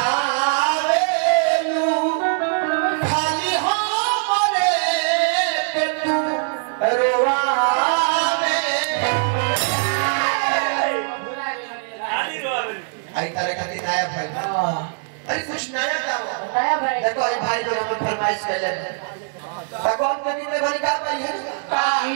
खाली हमरे के तू रोवावे आई तारे खातिर नया भाई अरे कुछ नया गाओ नया भाई देखो आई भाई लोग हम फरमाइश कैले भगवान के दिन में भाई का भाई है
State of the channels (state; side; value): silent; left; digital silence